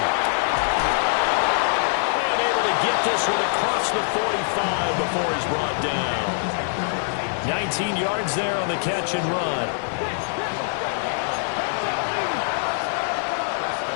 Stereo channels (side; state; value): right; silent; digital silence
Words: And able to get this one across the 45 before he's brought down. 19 yards there on the catch and run.